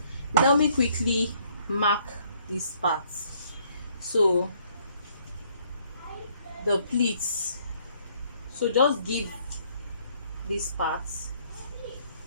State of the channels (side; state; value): both; inverted; correlation -0.65